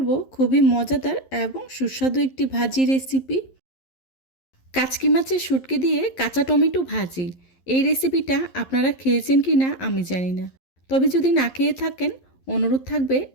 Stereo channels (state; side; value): late; right; 11 ms